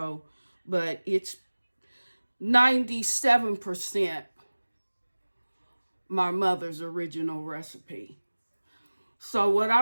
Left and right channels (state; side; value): inverted; both; correlation -1.00